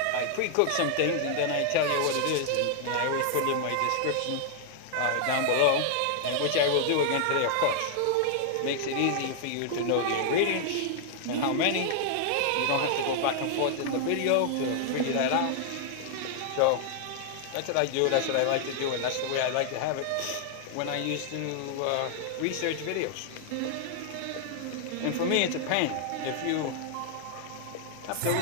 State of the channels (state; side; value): different; both; correlation -0.01